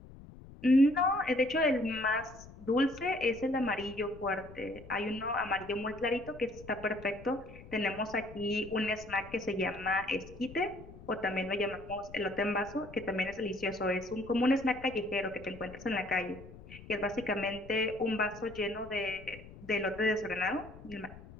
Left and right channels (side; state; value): left; noise; rumble, 17 dB below the sound